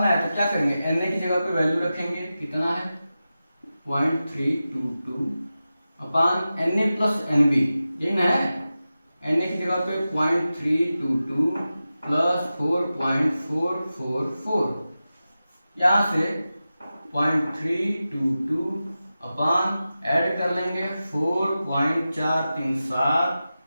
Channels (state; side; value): inverted; both; correlation -0.93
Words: है तो क्या करेंगे, Na की जगह पे वैल्यू रखेंगे, कितना है 0.322 अपान Na प्लस Nb, यही ना है, Na की जगह पे 0.322 प्लस 4.444, यहाँ से 0.322 अपॉन ऐड कर लेंगे